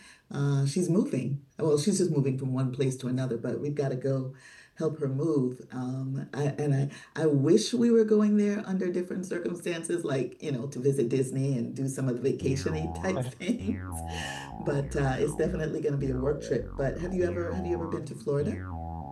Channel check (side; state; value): both; identical; correlation 1.00